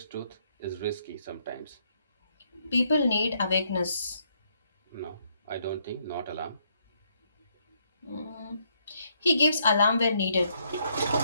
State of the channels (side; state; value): both; inverted; correlation -0.73